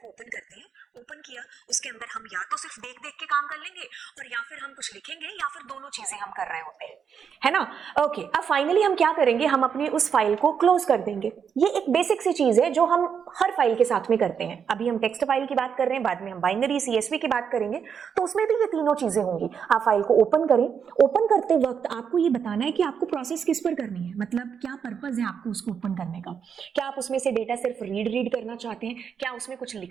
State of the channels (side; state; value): left; quieter; 7.1 dB